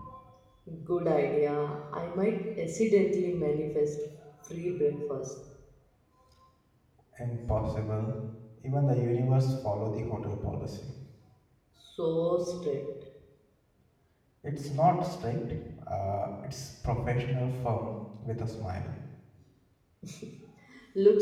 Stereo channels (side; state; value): both; identical; correlation 1.00